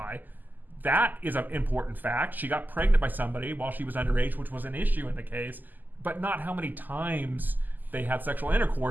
that is an important fact. She got pregnant by somebody while she was underage, which was an issue in the case, but not how many times they had sexual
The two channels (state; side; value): late; left; 0.086 ms